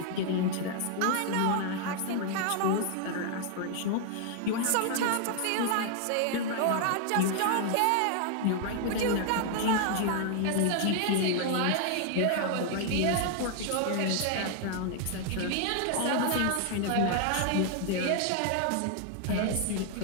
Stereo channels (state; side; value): different; both; correlation 0.00